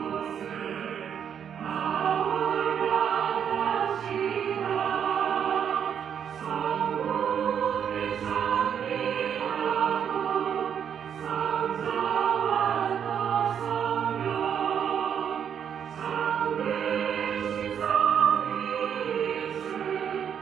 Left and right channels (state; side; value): quieter; left; 8.3 dB